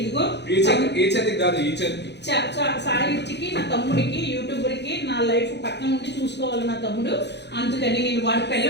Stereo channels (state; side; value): late; right; 0.50 ms